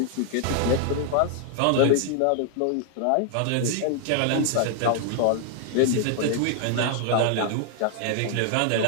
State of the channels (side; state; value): both; different; correlation 0.00